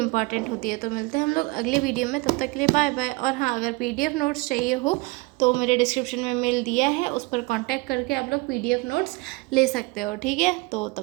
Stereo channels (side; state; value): left; quieter; 24.5 dB